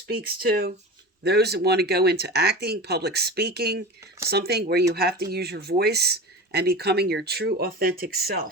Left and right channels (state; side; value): normal; both; correlation 0.30